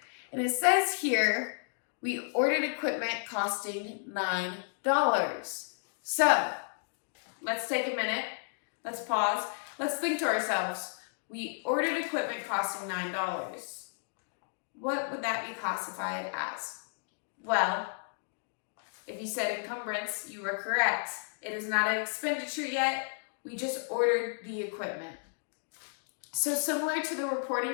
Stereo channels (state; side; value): silent; right; digital silence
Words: And it says here, we ordered equipment costing $9. So, let's take a minute. Let's pause. Let's think to ourselves. We ordered equipment costing $9. What would that be classified as? Well, if you said encumbrance, you were correct. It is not an expenditure yet. We just ordered the equipment. So similar to the